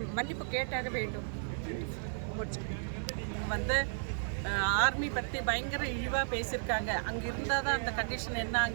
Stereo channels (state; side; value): silent; left; 55 dB below the other